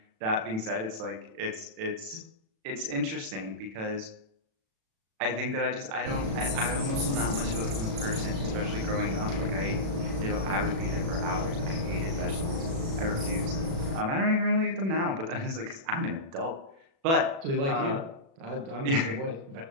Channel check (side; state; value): left; late; 36 ms